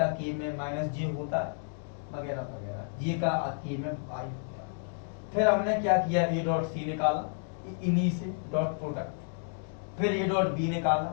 के में माइनस जे होता है वगैरह वगैरह, जे का के में आई हो गया। फिर हमने क्या किया, ए डॉट सी निकाला इन्हीं से डॉट प्रोडक्ट, फिर ए डॉट बी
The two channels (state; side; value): silent; right; digital silence